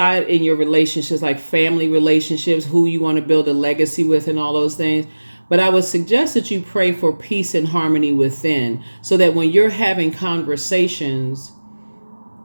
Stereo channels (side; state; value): both; inverted; correlation -1.00